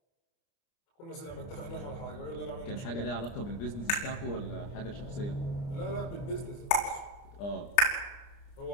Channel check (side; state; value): right; late; 29 ms